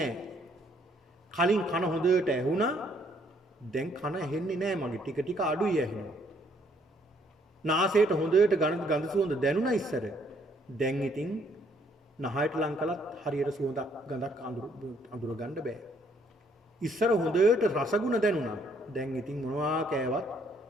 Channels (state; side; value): normal; both; correlation 0.67